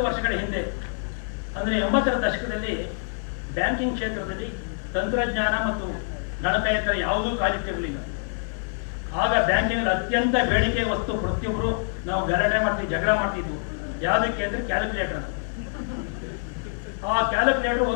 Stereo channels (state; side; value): silent; right; 60 dB below the other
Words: ವರ್ಷಗಳ ಹಿಂದೆ ಅಂದರೆ 80ರ ದಶಕದಲ್ಲಿ ಬ್ಯಾಂಕಿಂಗ್ ಕ್ಷೇತ್ರದಲ್ಲಿ ತಂತ್ರಜ್ಞಾನ ಮತ್ತು ಗಣಕಯಂತ್ರ ಯಾವುದೂ ಕಾಲಿಟ್ಟಿರಲಿಲ್ಲ. ಆಗ ಬ್ಯಾಂಕಿಂಗ್ ಅತ್ಯಂತ ಬೇಡಿಕೆ ವಸ್ತು ಪ್ರತಿಯೊಬ್ಬರು ನಾವು ಗಲಾಟೆ ಮಾಡ್ತೀವಿ, ಜಗಳ ಮಾಡ್ತಿದ್ವು. ಯಾವುದಕ್ಕೆ ಅಂದರೆ ಕ್ಯಾಲ್ಕುಲೇಟರ್. ಆ ಕ್ಯಾಲ್ಕುಲೇಟರ್